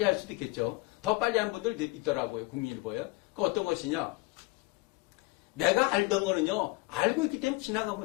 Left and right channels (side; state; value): right; quieter; 23.0 dB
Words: 할 수도 있겠죠. 더 빨리 한 분들 있더라고요. 국민일보에. 그 어떤 것이냐? 내가 알던 거는요, 알고 있기 때문에